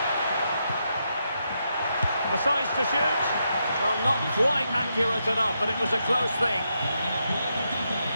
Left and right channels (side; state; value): both; inverted; correlation -0.82